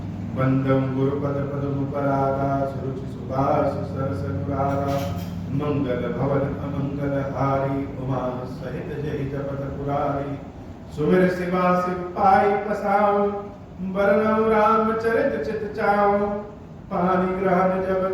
वंदम गुरुपद पद्म परागा सुरुचि सुभाष सरस अनुरागा मंगल भवन अमंगल हारी उमा सहित जय जपत पुरारी सुमिर शिवा शिव पाई पसाऊं बरनऊ रामचरित चित चाऊं पानी ग्रहण जब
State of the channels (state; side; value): identical; both; correlation 1.00